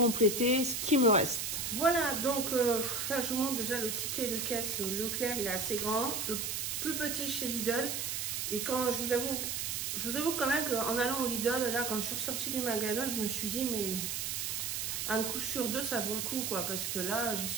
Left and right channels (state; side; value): noise; right; hiss, 2 dB below the sound